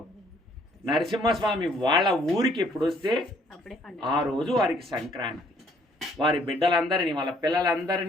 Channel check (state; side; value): normal; both; correlation 0.63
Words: నరసింహస్వామి వాళ్ళ ఊరికి ఎప్పుడు వస్తే ఆ రోజు వారికి సంక్రాంతి. వారి బిడ్డలందరినీ వాళ్ళ